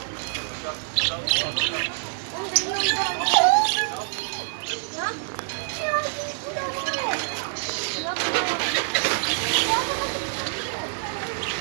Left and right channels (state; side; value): silent; left; digital silence